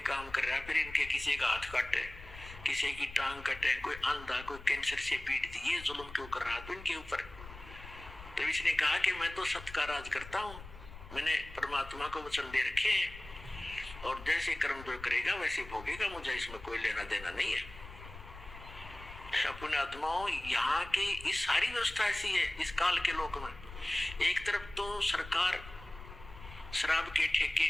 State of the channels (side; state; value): left; noise; rumble, 15 dB below the sound